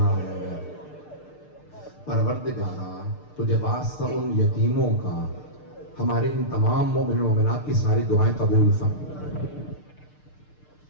ہیں؟ پروردگارا تجھے واسطہ ان یتیموں کا ہمارے ان تمام مومن و مومنات کی ساری دعائیں قبول فرما۔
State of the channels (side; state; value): right; late; 6.7 ms